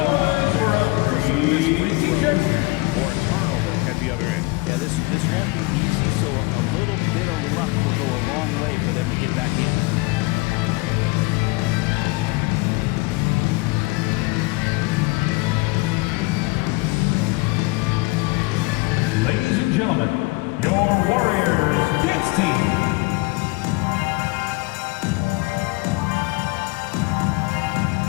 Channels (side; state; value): right; quieter; 24.5 dB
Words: for a free t-shirt. Or a turnover at the other end. Yeah, this won't be easy, so a little bit of luck will go a long way for them to get back in. Ladies and gentlemen, your Warriors dance team.